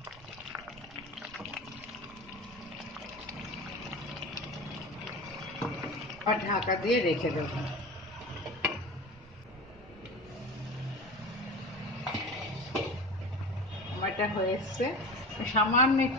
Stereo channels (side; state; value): right; noise; rumble, 21 dB below the sound